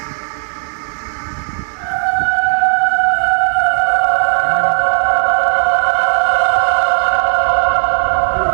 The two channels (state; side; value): silent; left; 63 dB below the other